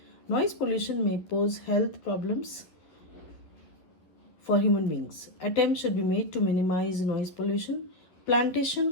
Noise pollution may pose health problems for human beings. Attempts should be made to minimize noise pollution.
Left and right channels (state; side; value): late; right; 11 ms